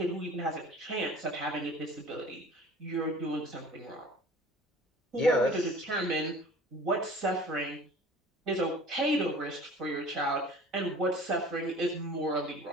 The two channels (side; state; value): both; normal; correlation 0.45